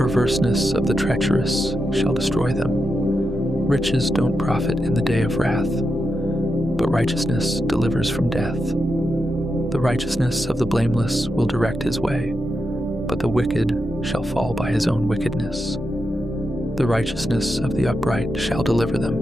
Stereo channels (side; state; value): both; normal; correlation 0.87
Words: of the treacherous shall destroy them. Riches don't profit in the day of wrath, but righteousness delivers from death. The righteousness of the blameless will direct his way, but the wicked shall fall by his own wickedness. The righteousness of the upright shall deliver